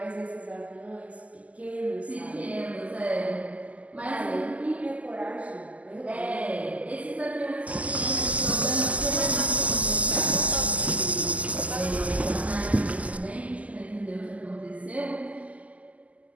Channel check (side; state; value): left; late; 0.071 ms